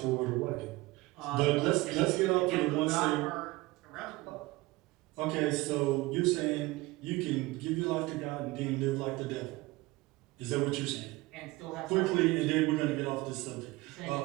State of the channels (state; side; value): quieter; left; 20.9 dB